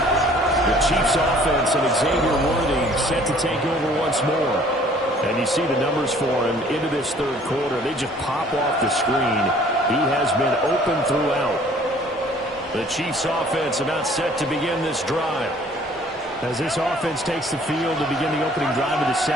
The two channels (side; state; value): both; normal; correlation 0.55